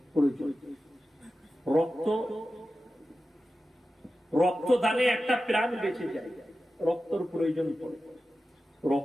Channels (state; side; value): normal; both; correlation 0.93